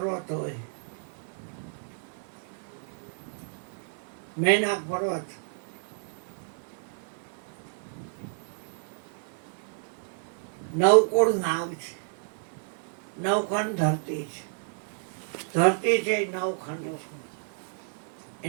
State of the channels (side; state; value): left; silent; 58 dB below the other